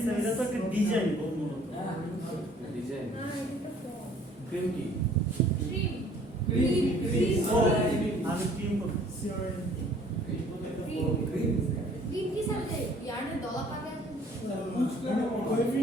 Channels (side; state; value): both; normal; correlation 0.56